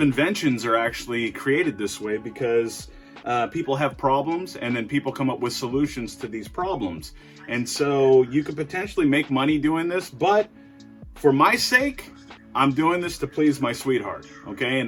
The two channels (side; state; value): both; identical; correlation 1.00